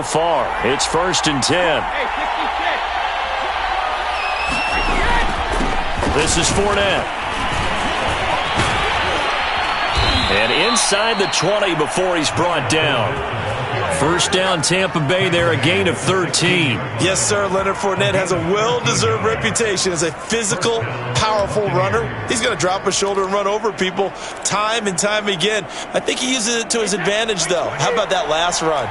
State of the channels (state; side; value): identical; both; correlation 1.00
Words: far. It's 1st and 10. This is Fournette. And inside the 20 before he's brought down. First down, Tampa Bay there, a gain of 13. Yes, sir. Leonard Fournette has a well-deserved reputation as a physical, powerful runner. He's going to drop a shoulder and run over people time and time again. I think he uses it to his advantage, though. How about that last run?